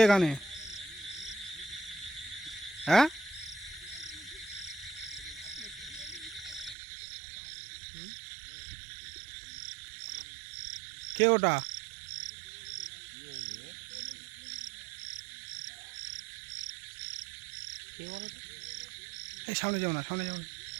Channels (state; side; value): drops out; left; at 6.8 s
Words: গানে? হ্যাঁ কে ওটা? কে বলো তো? এই সামনে যাও না, সামনে যাও না।